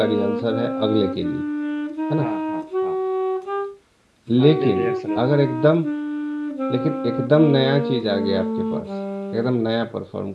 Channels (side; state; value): both; identical; correlation 1.00